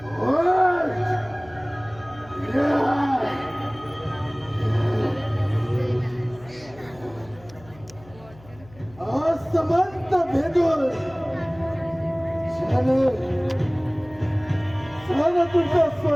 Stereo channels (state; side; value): noise; left; hum, 23 dB below the sound